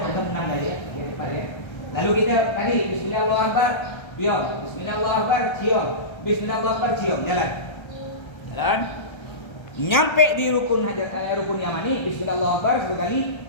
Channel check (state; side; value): late; right; 1.3 ms